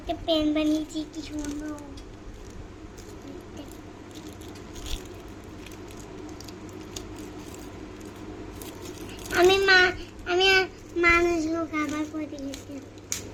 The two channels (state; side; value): identical; both; correlation 1.00